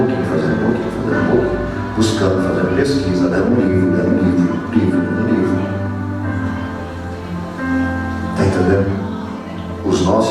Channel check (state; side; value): identical; both; correlation 1.00